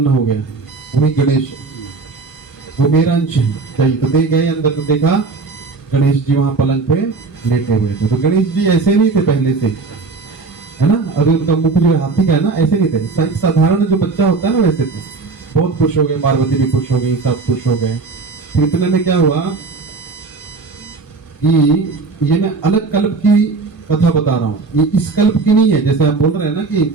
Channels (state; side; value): quieter; left; 4.1 dB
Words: हो गया, वही गणेश, वो मेरा अंश है, चाहिए। तो दे गए अंदर, तो देखा गणेश जी वहां पलंग पे लेटे हुए थे। तो गणेश जी ऐसे नहीं थे पहले से, है ना। अभी उनका मुख जो हाथी का है ना, ऐसे नहीं थे, साधारण जो बच्चा होता है ना वैसे थे। बहुत खुश हो गए, पार्वती भी खुश हो गई, सब खुश हो गए। फिर इतने में क्या हुआ कि ये मैं अलग कल्प की कथा बता रहा हूँ, ये इस कल्प की नहीं है। जैसे आप बोल रहे हैं ना कि